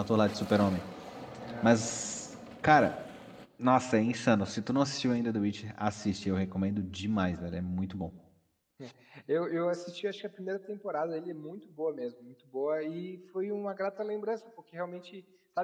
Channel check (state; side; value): identical; both; correlation 1.00